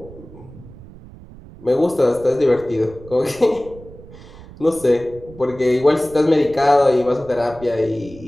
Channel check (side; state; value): right; noise; rumble, 19 dB below the sound